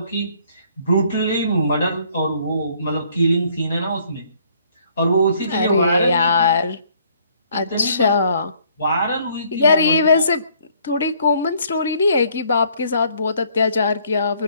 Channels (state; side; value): inverted; both; correlation -0.63